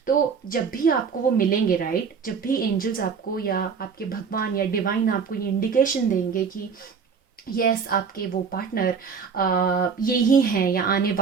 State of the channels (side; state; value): left; quieter; 6.0 dB